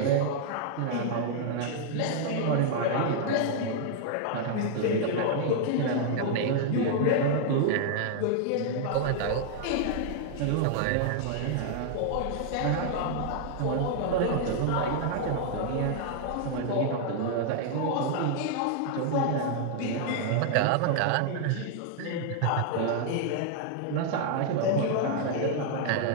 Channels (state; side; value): different; both; correlation -0.01